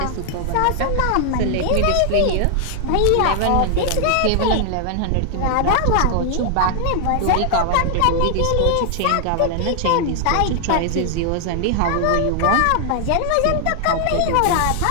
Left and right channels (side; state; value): both; different; correlation 0.00